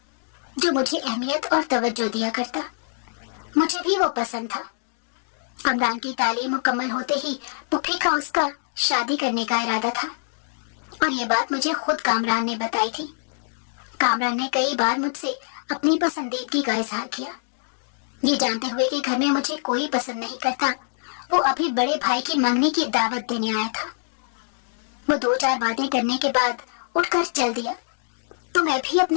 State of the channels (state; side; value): silent; right; digital silence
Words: جو مجھے اہمیت اور توجہ دیا کرتا۔ مجھے بھی وہ پسند تھا۔ کامران کی تعلیم مکمل ہوتے ہی پھوپھی کا اس کا شادی کرنے کا ارادہ تھا، اور یہ بات مجھے خود کامران نے بتائی تھی۔ کامران نے کئی بار مجھ سے اپنی پسندیدگی کا اظہار کیا۔ یہ جانتے ہوئے کہ گھر میں مجھے کوئی پسند نہیں کرتا، وہ ابھی بڑے بھائی کی منگنی کی دعوت دینے آیا تھا۔ وہ دو چار باتیں کرنے کے بعد اٹھ کر چل دیا تو میں بھی